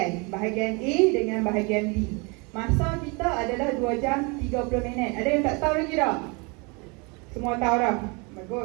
bahagian A dengan bahagian B. Masa kita adalah 2 jam 30 minit. Ada yang tak tahu lagi tak? Semua tahu dah?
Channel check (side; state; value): left; quieter; 30.2 dB